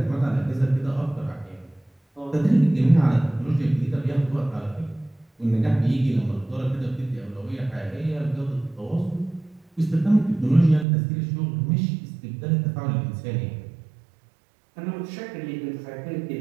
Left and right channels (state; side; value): drops out; left; at 10.9 s